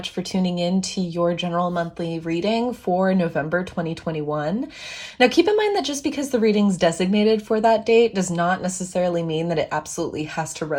for tuning in to your general monthly reading for November 2021. Now keep in mind that just because the reading's designated for that date does not necessarily mean that it absolutely has to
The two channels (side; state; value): both; identical; correlation 1.00